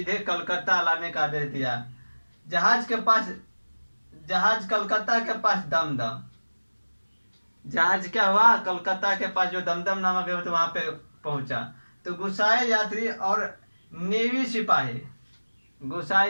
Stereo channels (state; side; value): inverted; both; correlation -1.00